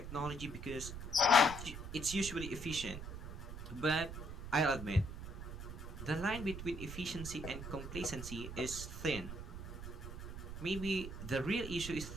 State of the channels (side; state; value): right; noise; rumble, 8 dB below the sound